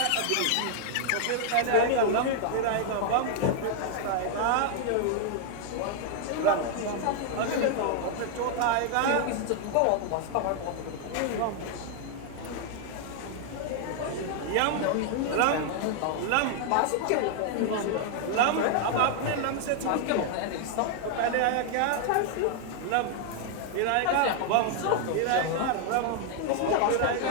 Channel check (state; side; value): different; both; correlation 0.00